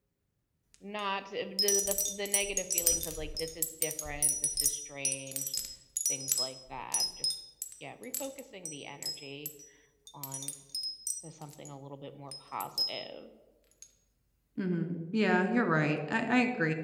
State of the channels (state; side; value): identical; both; correlation 1.00